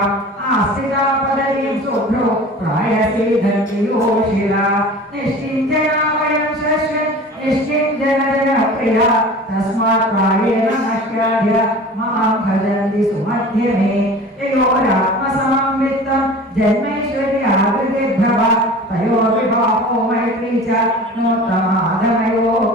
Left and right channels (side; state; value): both; normal; correlation 0.39